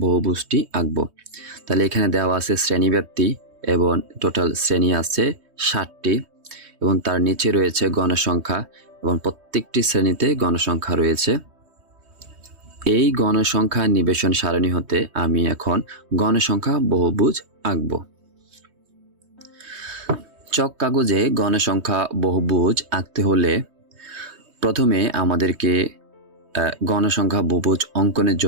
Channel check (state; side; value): late; left; 3.2 ms